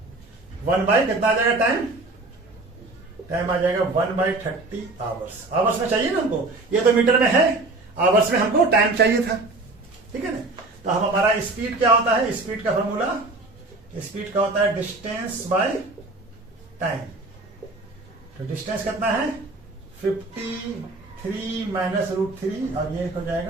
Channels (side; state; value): left; quieter; 3.1 dB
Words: 1 कितना आ जाएगा? टाइम आ जाएगा 1/30 आवर्स। आवर्स में चाहिए ना हमको, ये तो मीटर में है, आवर्स में हमको टाइम चाहिए था, ठीक है ना। तो हम हमारा स्पीड क्या होता है? स्पीड का फॉर्मूला, स्पीड का होता है डिस्टेंस बाय टाइम। तो डिस्टेंस कितना है? 53 माइनस √3 और ये हो